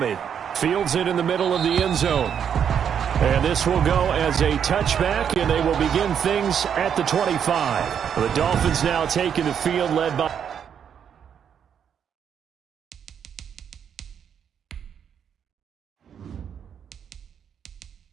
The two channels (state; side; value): quieter; left; 8.1 dB